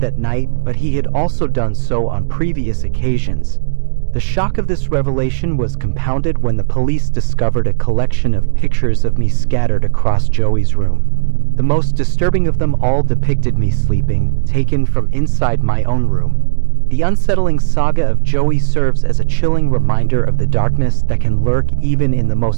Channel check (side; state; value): left; silent; digital silence